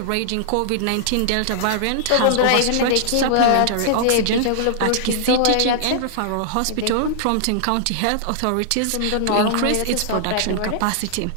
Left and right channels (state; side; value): different; both; correlation -0.01